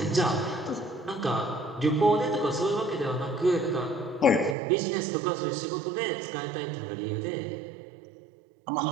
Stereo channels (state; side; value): drops out; left; at 4.5 s